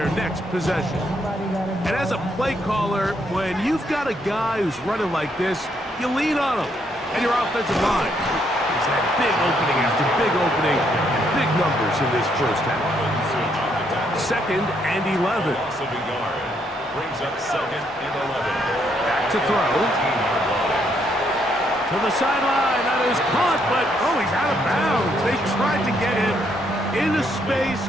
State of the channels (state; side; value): normal; both; correlation 0.73